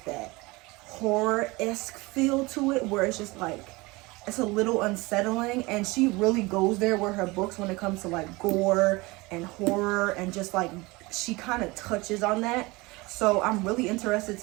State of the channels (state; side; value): quieter; left; 23.3 dB